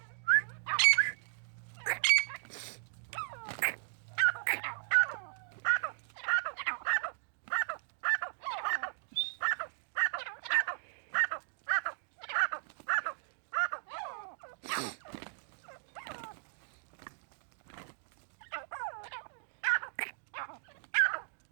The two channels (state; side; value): silent; left; digital silence